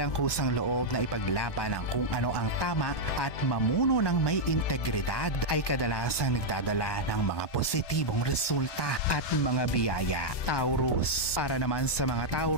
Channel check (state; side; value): late; right; 1.2 ms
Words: kusang loob na ipaglaban ang kung ano ang tama at mamuno ng may integridad ay kadalasang nagdadala ng mga positibong resulta at mga biyaya. Taurus. Para naman sa mga